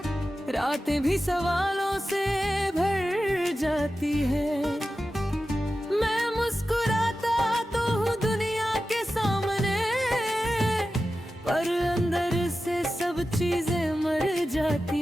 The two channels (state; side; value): normal; both; correlation 0.93